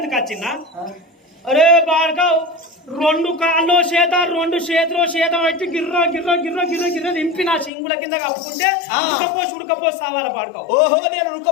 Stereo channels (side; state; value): right; drops out; at 7.7 s